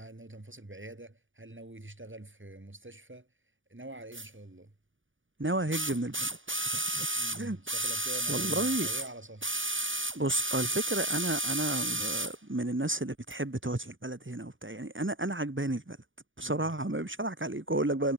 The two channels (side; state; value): left; late; 0.57 ms